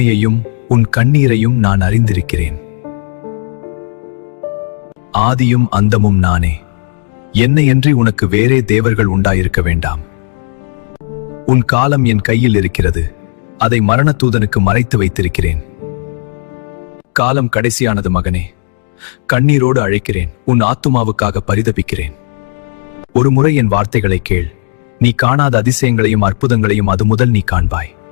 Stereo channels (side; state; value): right; silent; 71 dB below the other